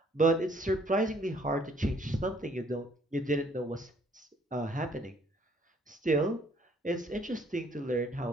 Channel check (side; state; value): both; normal; correlation 0.62